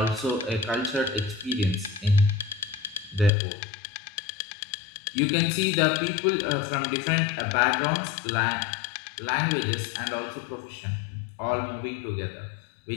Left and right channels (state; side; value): drops out; right; at 3.3 s